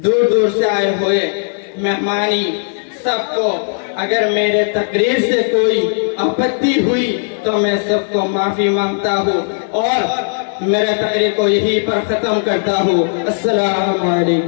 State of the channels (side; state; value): right; silent; 66 dB below the other